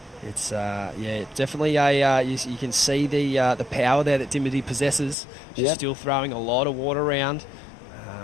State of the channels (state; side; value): drops out; right; at 5.2 s